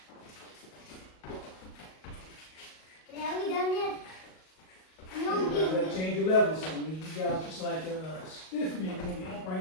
Are we done yet? No, You gotta change your levels. So you guys just like a stiff man, you're gonna be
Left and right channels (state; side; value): late; right; 38 ms